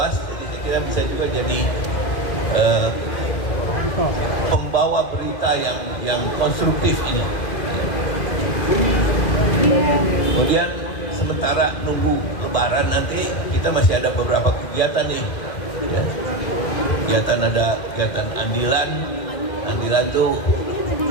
jadi saya kira bisa juga jadi pembawa berita yang konstruktif ini. Kemudian sementara nunggu Lebaran nanti kita masih ada beberapa kegiatan nih. Ya. Kegiatan andilan. Andilan tuh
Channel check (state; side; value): late; right; 2.0 ms